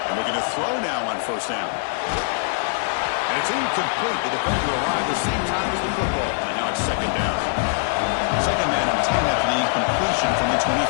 Looking to throw now on first down. And it's incomplete. The defender arrived the same time as the football. And now it's second down. Second man and 10 after the incompletion from the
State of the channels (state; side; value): silent; right; digital silence